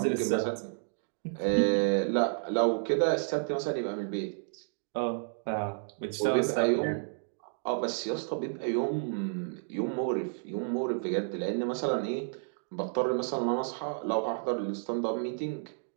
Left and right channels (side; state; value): left; silent; digital silence